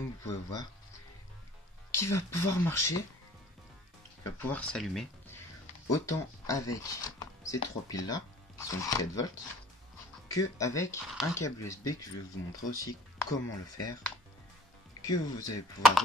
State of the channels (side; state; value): both; normal; correlation 0.48